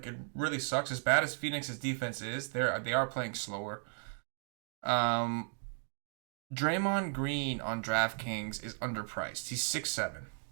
it really sucks. As bad as Phoenix's defense is, they are playing slower. Draymond Green on DraftKings is underpriced. He's 6'7".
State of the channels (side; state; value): left; silent; 54 dB below the other